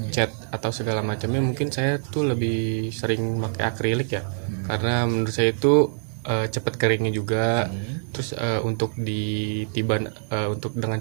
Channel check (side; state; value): left; silent; digital silence